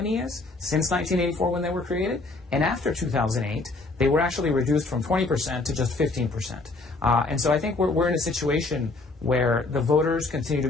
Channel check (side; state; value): right; quieter; 3.4 dB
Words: is since 1984 when they were created, and after 2008, they were actually reduced from 20% to just 15%. And so I think we're in a situation where the voters continue to